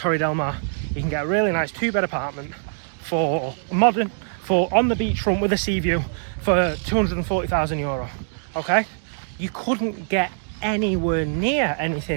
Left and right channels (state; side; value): silent; left; digital silence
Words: del Mar, you can get a really nice 2-bed apartment for modern, for on the beachfront with a sea view for €240,000. Okay, you couldn't get anywhere near